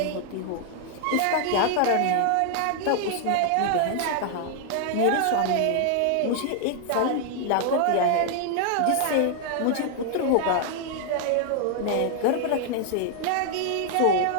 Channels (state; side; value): different; both; correlation 0.00